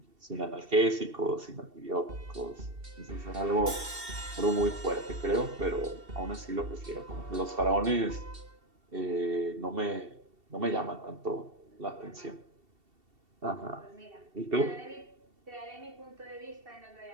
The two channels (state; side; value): late; left; 2.7 ms